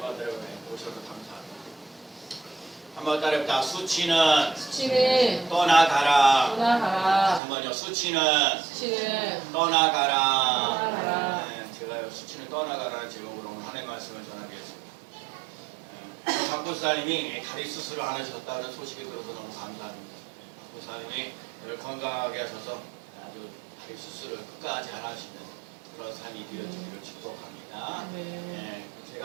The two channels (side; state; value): left; drops out; at 7.4 s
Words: 오셔서 감사합니다. 한번 따라해봅니다. 수치는 수치는 떠나가라. 떠나가라. 한번요. 수치는 수치는 떠나가라. 떠나가라. 네, 제가요. 수치는 떠나가라는 제목으로 오늘 하나님의 말씀을 전하겠습니다. 박보사님이 다리 수술을 안 하셨다는 소식이 들어서 너무 감사합니다. 박보사님이 건강하게 하셔서 아주 다리 수술을 끝까지 안 하시는 그런 삶이 되어지기를 축복합니다. 네.